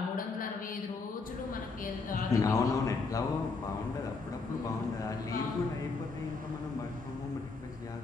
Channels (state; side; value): quieter; right; 4.2 dB